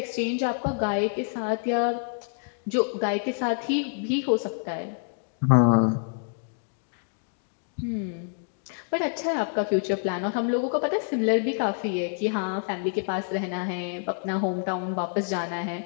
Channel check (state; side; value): silent; right; digital silence